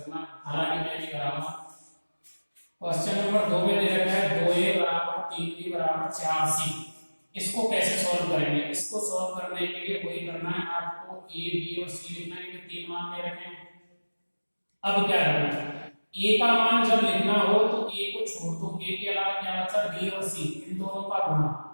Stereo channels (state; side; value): inverted; both; correlation -1.00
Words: हालांकि मैं नहीं कराऊंगा। क्वेश्चन नंबर 2 में दे रखा है 2a बराबर 3b बराबर 4c। इसको कैसे सॉल्व करेंगे, इसको सॉल्व करने के लिए वही करना है, आपको a b और c लिखना है, कि 3 मान दे रखे हैं। अब क्या करना है, a का मान जब लिखना हो तो a को छोड़ दो, a के अलावा क्या बचा b और c, इन दोनों का गुणा,